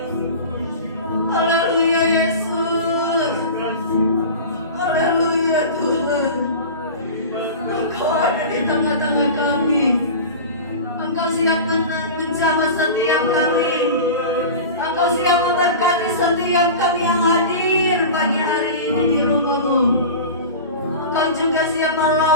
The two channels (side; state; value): both; inverted; correlation -0.32